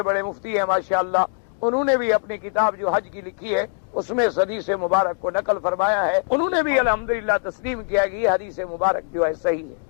بڑے مفتی ہیں ماشاءاللہ، انہوں نے بھی اپنی کتاب جو حج کی لکھی ہے اس میں اس حدیث مبارک کو نقل فرمایا ہے، انہوں نے بھی الحمدللہ تسلیم کیا کہ یہ حدیث مبارک جو ہے صحیح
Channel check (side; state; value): right; silent; digital silence